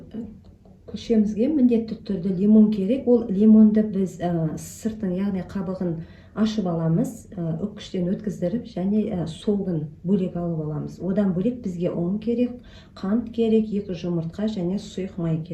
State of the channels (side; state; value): both; identical; correlation 1.00